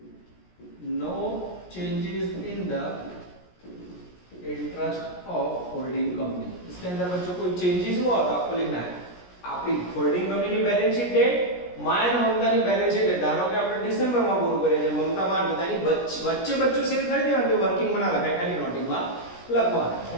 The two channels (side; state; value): right; late; 17 ms